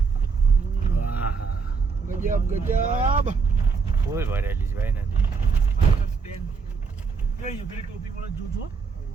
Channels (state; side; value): quieter; left; 5.1 dB